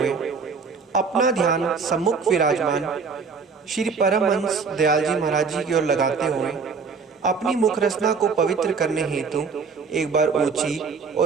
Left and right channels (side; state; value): left; quieter; 5.2 dB